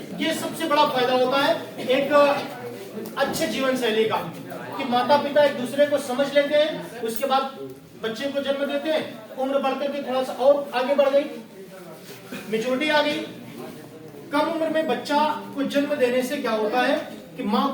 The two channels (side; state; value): both; identical; correlation 1.00